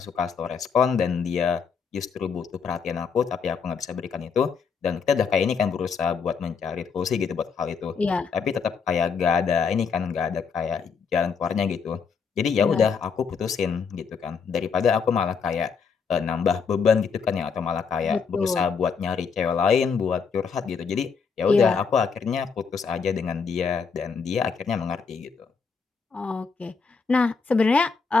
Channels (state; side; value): quieter; right; 5.8 dB